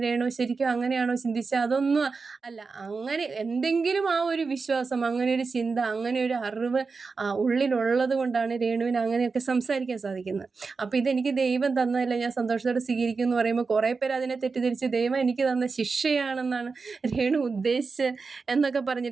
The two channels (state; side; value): quieter; left; 4.6 dB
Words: രേണു ശരിക്കും അങ്ങനെയാണോ ചിന്തിച്ചത്? അതൊന്നും അല്ല. അങ്ങനെ എന്തെങ്കിലും ആ ഒരു വിശ്വാസം, അങ്ങനെ ഒരു ചിന്ത, അങ്ങനെ ഒരു അറിവ് ഉള്ളിലുള്ളത് കൊണ്ടാണ് രേണുവിന് അങ്ങനെയൊക്കെ സംസാരിക്കാൻ സാധിക്കുന്നത്. അപ്പോൾ ഇതെനിക്ക് ദൈവം തന്നതല്ല, ഞാൻ സന്തോഷത്തോടെ സ്വീകരിക്കും എന്ന് പറയുമ്പോൾ കുറേ പേര് അതിനെ തെറ്റിദ്ധരിച്ച് ദൈവം എനിക്ക് തന്ന ശിക്ഷയാണെന്നാണ് രേണു ഉദ്ദേശിച്ച് എന്നൊക്കെ